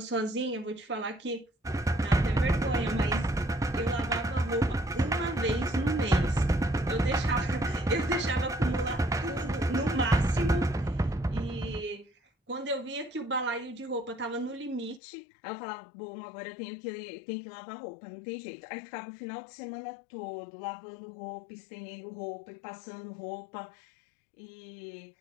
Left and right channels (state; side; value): drops out; right; at 15.0 s